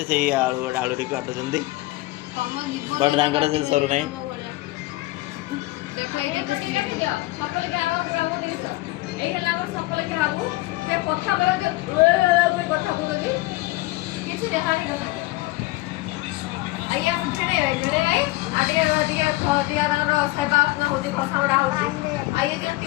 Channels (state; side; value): quieter; right; 19.8 dB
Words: से आलू आलू टी काटुंट बट तांकर से सरू नहीं आइए हम झड़े भाई आगे आगे खदिया रो सेवा ना होती भाषा बड़ा होती आइए जो